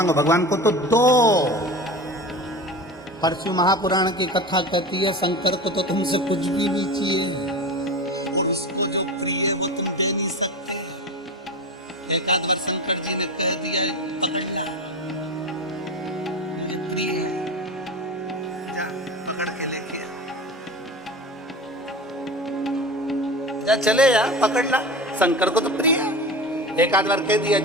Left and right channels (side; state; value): both; normal; correlation 0.29